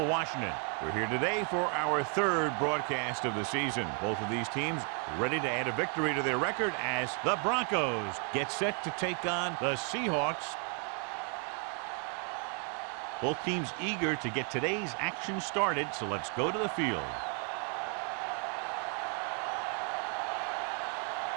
Washington. We're here today for our third broadcast of the season. Both of these teams ready to add a victory to their record as the Broncos get set to take on the Seahawks. Both teams eager to get today's action started, so let's go to the field.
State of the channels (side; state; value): left; quieter; 39.5 dB